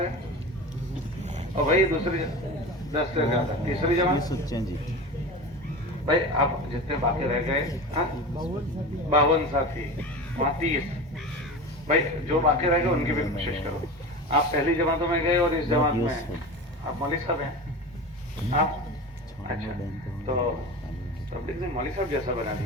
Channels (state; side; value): normal; both; correlation 0.30